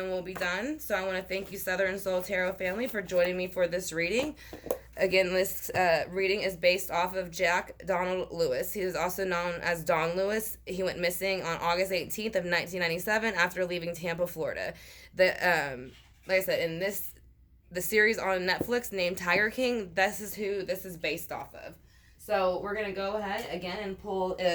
we'll be done. So I want to thank you, Southern Soul Tarot family, for joining me for this reading. Again, this reading is based off of Jack Donald Lewis. He is also known as Don Lewis. He went missing on August 18th of 1997 after leaving Tampa, Florida. Like I said, in the series on Netflix named Tiger King, this is who this is based off of. So we're going to go ahead again and pull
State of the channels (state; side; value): identical; both; correlation 1.00